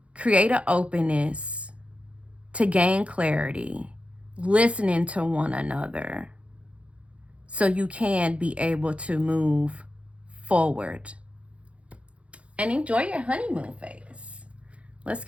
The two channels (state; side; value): late; left; 0.062 ms